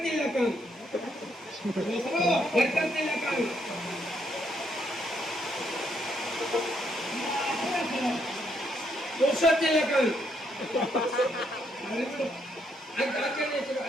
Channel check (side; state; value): both; normal; correlation 0.74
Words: ಖಾನ್. ಬರ್ಕತ್ತಿಲ್ಲ ಖಾನ್. ಪುರುಷೋತ್ತಿಲ್ಲ ಖಾನ್.